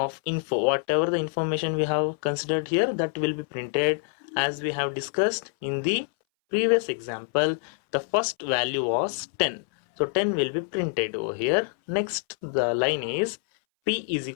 info. Whatever the information we have considered here, that will be printed as we have discussed in the previous example. The first value was 10. So 10 will be printed over here. Next, the line is p is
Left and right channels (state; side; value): silent; right; 60 dB below the other